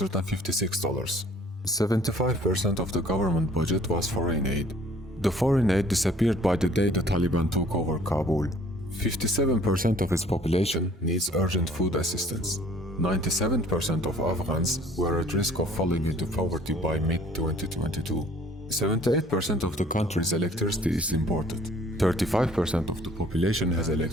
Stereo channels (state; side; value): normal; both; correlation 0.55